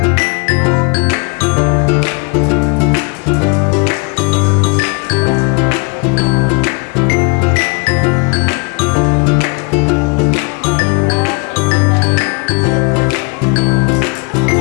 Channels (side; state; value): right; quieter; 33.4 dB